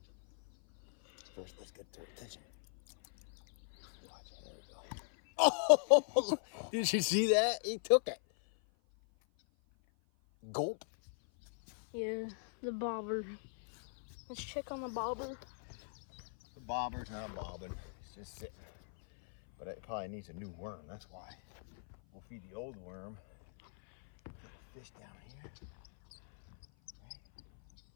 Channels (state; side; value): silent; right; 52 dB below the other